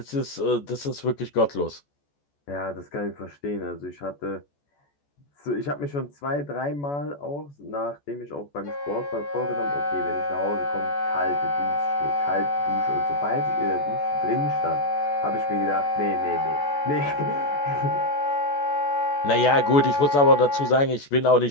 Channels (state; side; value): late; right; 14 ms